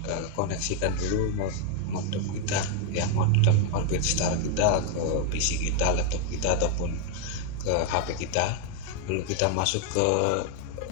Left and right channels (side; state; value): both; different; correlation 0.01